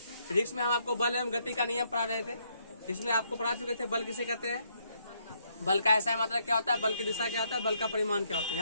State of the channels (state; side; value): inverted; both; correlation -0.73